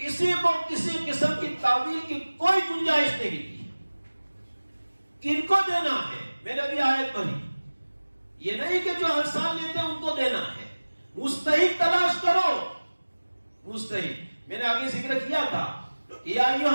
کو کسی قسم کی تعویل کی کوئی گنجائش نہیں دی. کن کو دینا ہے, میں نے بھی آیت پڑھی, یہ نہیں کہ جو ہر سال لیتے ہیں ان کو دینا ہے. مستحق تلاش کرو, مستحق. میں نے آگے ذکر کیا تھا یا ایھا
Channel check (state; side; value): inverted; both; correlation -1.00